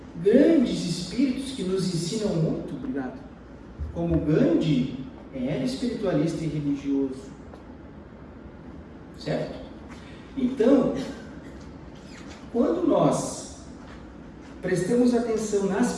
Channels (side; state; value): both; identical; correlation 1.00